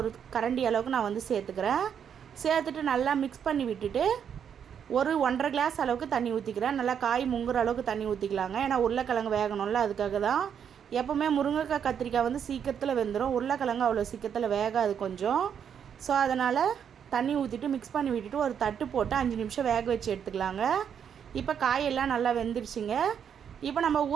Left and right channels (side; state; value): left; quieter; 8.1 dB